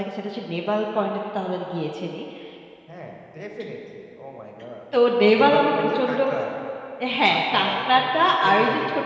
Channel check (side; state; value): both; identical; correlation 1.00